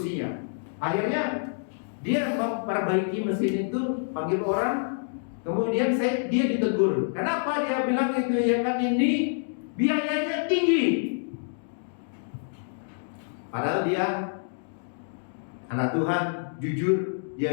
Akhirnya dia memperbaiki mesin itu, panggil orang, kemudian dia ditegur. Kenapa? Dia bilang itu ya kan, ini biayanya tinggi. Padahal dia anak Tuhan, jujur,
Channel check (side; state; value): right; silent; digital silence